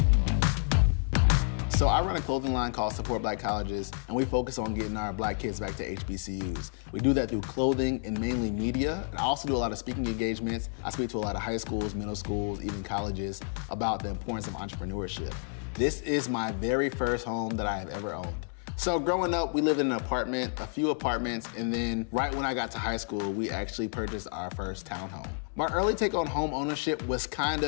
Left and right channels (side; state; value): right; silent; 58 dB below the other